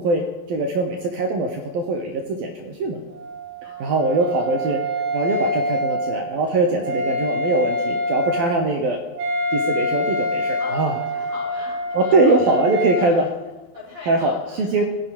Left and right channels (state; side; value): late; left; 12 ms